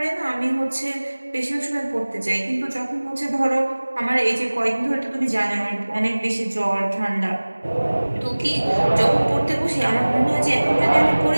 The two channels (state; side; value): inverted; both; correlation -1.00